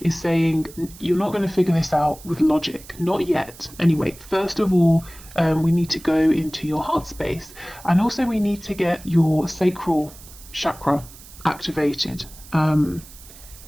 saying, you're not going to figure this out with logic. Not yet. Anyway, first of all, we need to go into your heart space. And also we need to get your sacral chakra activated.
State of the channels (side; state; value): right; noise; hiss, 20 dB below the sound